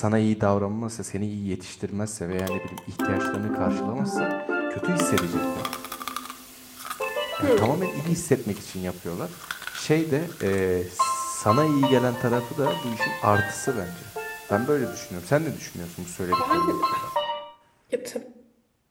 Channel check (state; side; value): identical; both; correlation 1.00